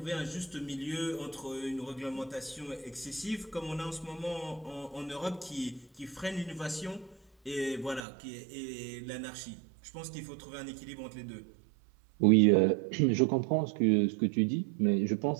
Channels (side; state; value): left; drops out; at 8.1 s